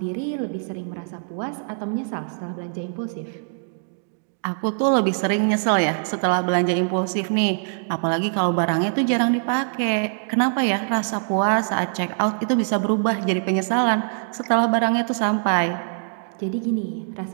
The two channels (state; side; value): silent; left; digital silence